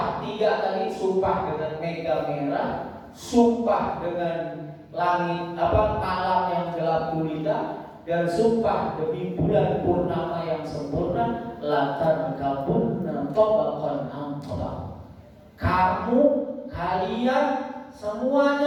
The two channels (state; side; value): identical; both; correlation 1.00